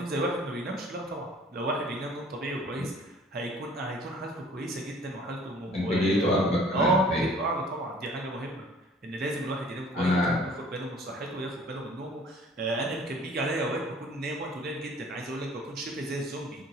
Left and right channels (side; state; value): both; normal; correlation 0.52